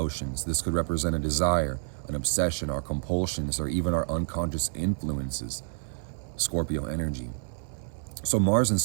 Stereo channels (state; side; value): silent; left; digital silence